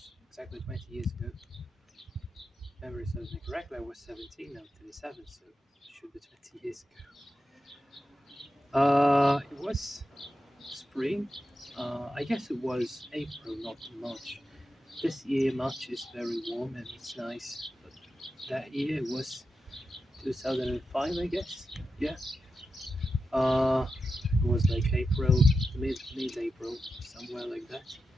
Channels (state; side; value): normal; both; correlation 0.89